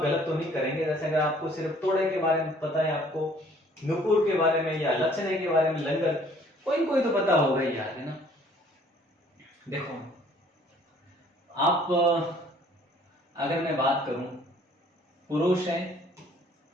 गलत तो नहीं करेंगे। जैसे अगर आपको सिर्फ तोड़े के बारे में पता है, आपको नूपुर के बारे में या लचने के बारे में, लंगर, कोई तो पता होगा ही यार, है ना। देखो आप अगर मैं बात करूं पुरुष है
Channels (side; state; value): both; normal; correlation 0.58